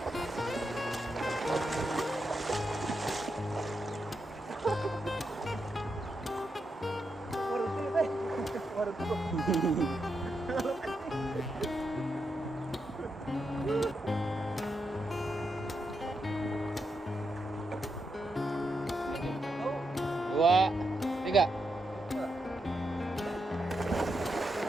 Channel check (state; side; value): normal; both; correlation 0.84